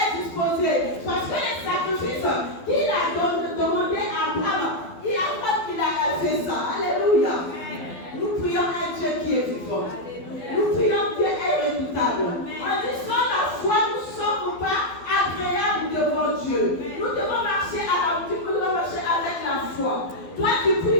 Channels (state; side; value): late; right; 12 ms